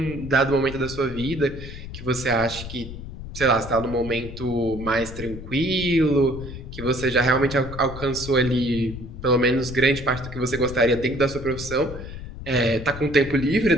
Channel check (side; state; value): left; noise; rumble, 11 dB below the sound